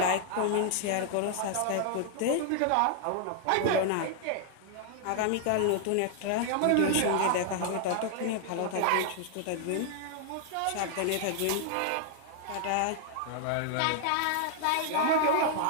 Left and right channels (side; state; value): both; different; correlation -0.01